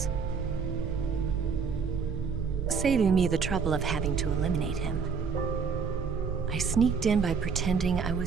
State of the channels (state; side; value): quieter; left; 5.7 dB